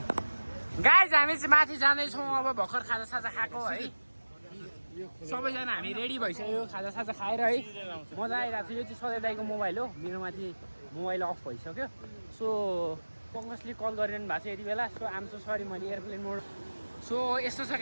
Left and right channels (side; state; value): both; inverted; correlation -1.00